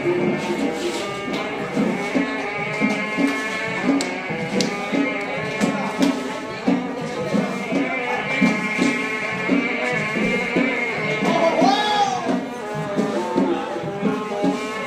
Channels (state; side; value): identical; both; correlation 1.00